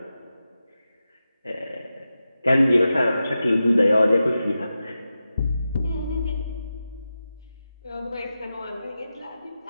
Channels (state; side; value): inverted; both; correlation -0.91